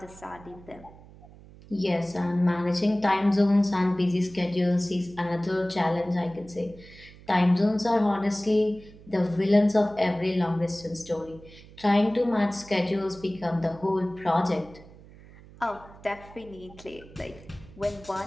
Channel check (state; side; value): noise; right; hum, 21 dB below the sound